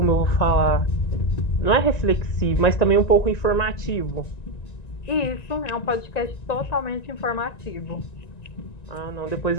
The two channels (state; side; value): late; right; 1.9 ms